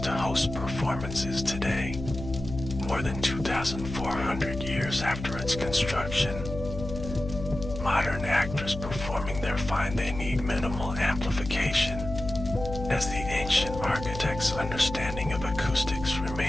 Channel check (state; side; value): noise; left; hum, 9 dB below the sound